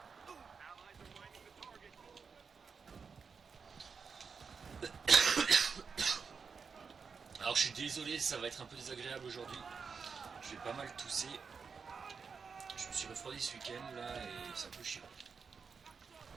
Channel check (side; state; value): left; quieter; 5.6 dB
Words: Alors je suis désolé, ça va être un peu désagréable aujourd'hui. Je vais pas mal tousser. Je me suis refroidi ce week-end là et c'est un peu chiant.